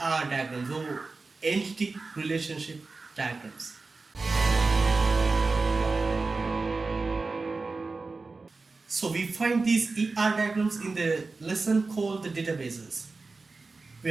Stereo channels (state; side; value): quieter; left; 3.9 dB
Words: diagrams or entity relationship diagrams. So we find these ER diagrams in the lesson called the databases. We